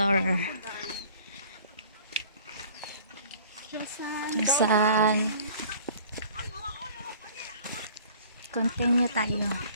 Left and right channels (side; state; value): both; inverted; correlation -0.51